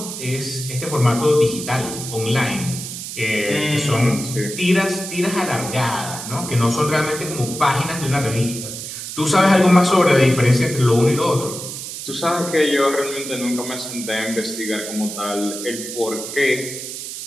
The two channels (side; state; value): right; noise; hiss, 8 dB below the sound